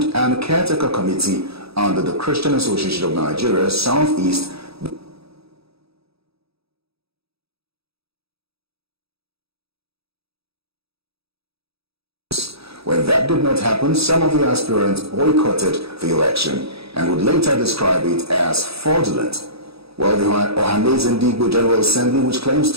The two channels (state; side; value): late; left; 0.77 ms